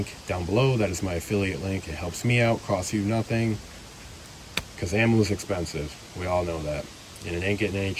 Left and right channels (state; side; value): identical; both; correlation 1.00